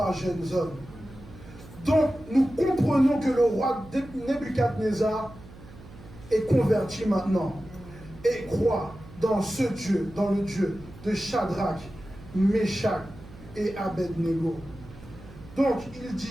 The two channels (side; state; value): right; noise; hum, 19 dB below the sound